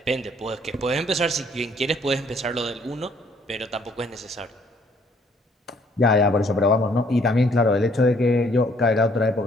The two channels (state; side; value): normal; both; correlation 0.63